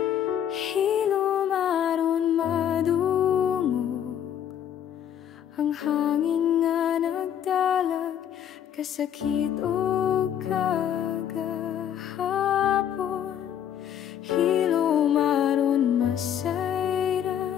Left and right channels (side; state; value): right; quieter; 9.6 dB